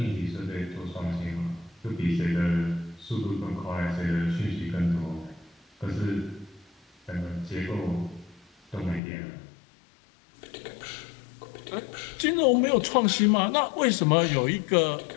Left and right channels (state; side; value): drops out; right; at 9.0 s